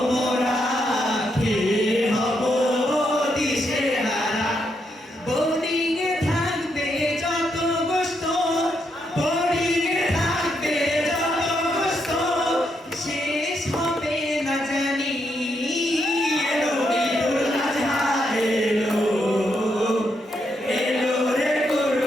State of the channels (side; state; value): both; normal; correlation 0.79